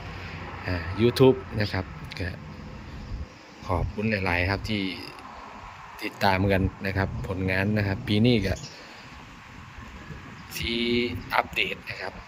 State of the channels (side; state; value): both; identical; correlation 1.00